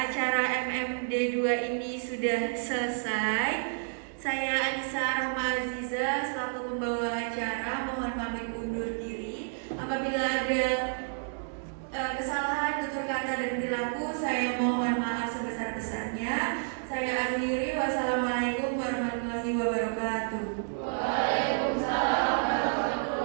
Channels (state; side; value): silent; left; digital silence